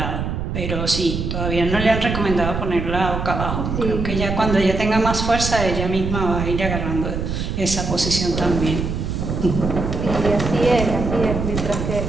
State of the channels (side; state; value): right; noise; rumble, 3 dB below the sound